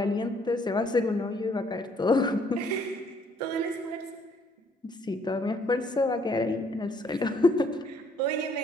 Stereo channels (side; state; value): both; normal; correlation 0.65